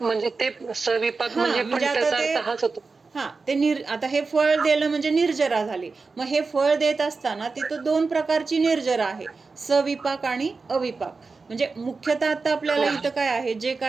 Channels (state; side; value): quieter; left; 4.3 dB